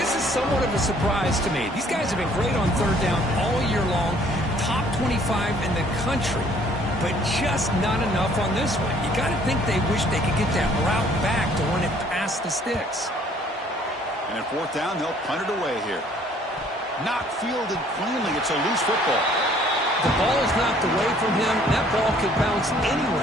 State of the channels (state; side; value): normal; both; correlation 0.59